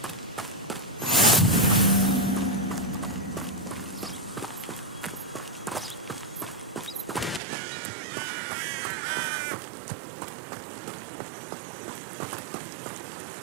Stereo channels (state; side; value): drops out; left; at 7.4 s